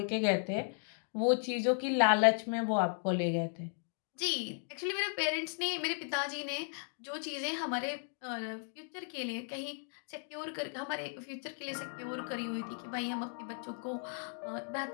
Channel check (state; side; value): silent; right; 54 dB below the other